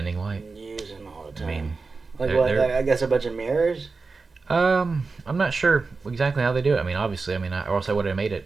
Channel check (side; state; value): left; quieter; 4.2 dB